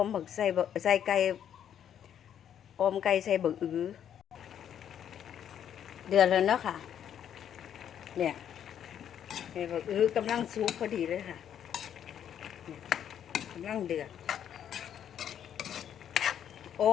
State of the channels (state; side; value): quieter; right; 9.5 dB